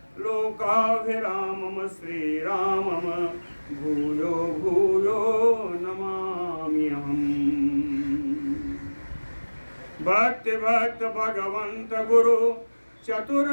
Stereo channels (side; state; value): both; inverted; correlation -1.00